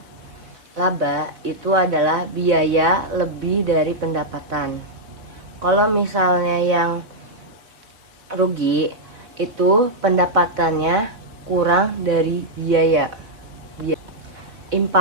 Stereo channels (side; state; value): left; late; 4.2 ms